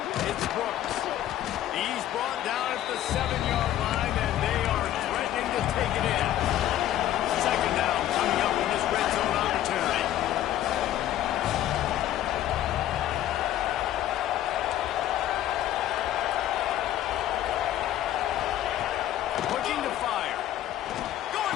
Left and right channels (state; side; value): quieter; right; 12.6 dB